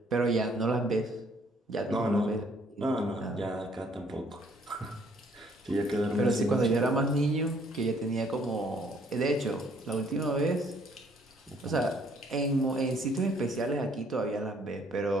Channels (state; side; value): normal; both; correlation 0.63